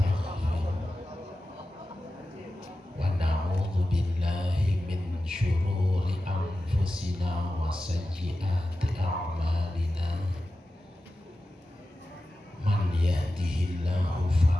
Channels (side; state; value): both; normal; correlation 0.93